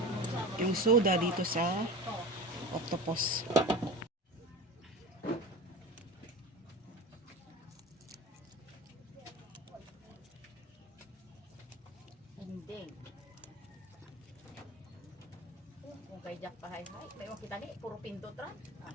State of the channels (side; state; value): both; normal; correlation 0.32